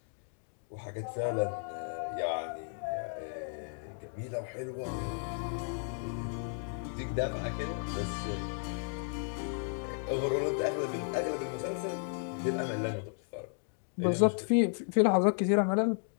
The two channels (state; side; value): silent; right; 55 dB below the other